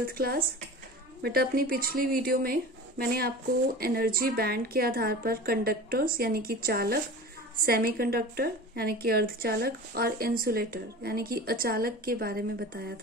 class. बेटा अपनी पिछली वीडियो में मैंने आपको एनर्जी बैंड के आधार पर कंडक्टर्स यानी कि चालक, सेमीकंडक्टर यानी कि अर्धचालक और इंसुलेटर यानी कि अचालक के बारे में बताया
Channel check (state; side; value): normal; both; correlation 0.36